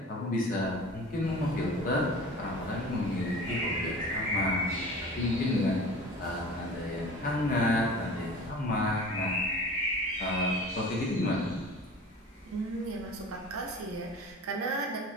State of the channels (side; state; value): both; normal; correlation 0.40